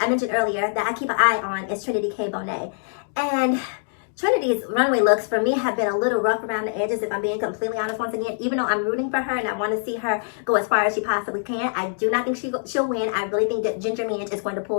mentioned earlier, that I keep an eye on is Trinity K. Bonet. And Trinity's runway looks for me have been a little rough around the edges, if I'm being completely honest. Once again, even though I'm rooting for her and I want to see her go as far as she possibly can, I do not think she'll win. I really think that Ginger Minj is going to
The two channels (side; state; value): right; silent; digital silence